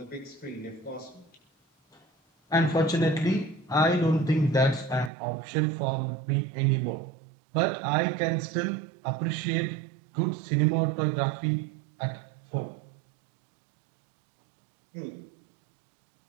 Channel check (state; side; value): drops out; left; at 5.1 s